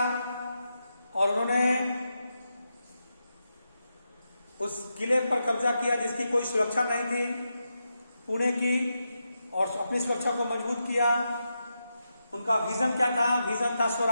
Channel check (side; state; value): both; inverted; correlation -0.87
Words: और उन्होंने उस किले पर कब्जा किया जिसकी कोई सुरक्षा नहीं थी पुणे की, और अपनी सुरक्षा को मजबूत किया। उनका विजन क्या था? विजन था